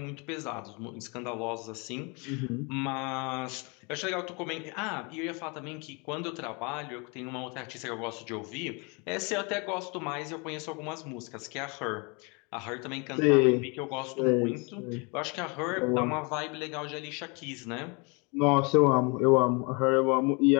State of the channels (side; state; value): right; quieter; 30.9 dB